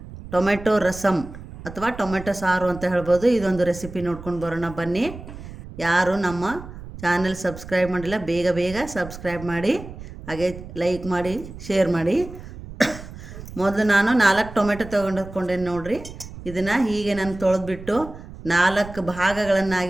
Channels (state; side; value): noise; right; rumble, 14 dB below the sound